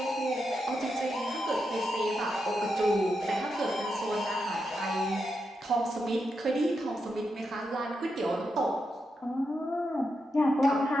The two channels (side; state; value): both; normal; correlation 0.85